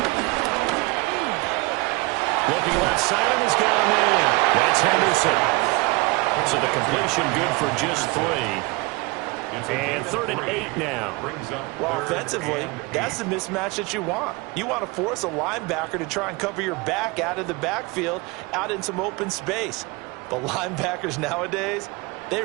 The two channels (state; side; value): quieter; left; 25.0 dB